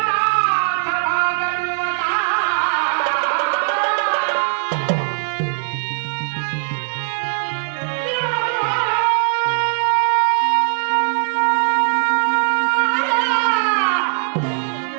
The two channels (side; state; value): left; silent; digital silence